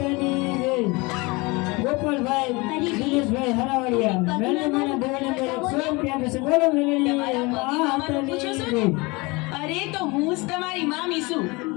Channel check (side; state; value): right; quieter; 25.4 dB